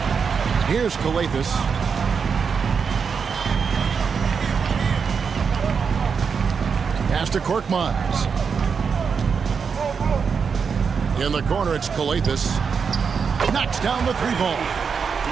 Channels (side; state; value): left; quieter; 6.0 dB